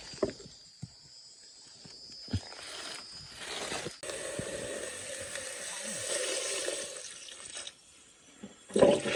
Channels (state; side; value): identical; both; correlation 1.00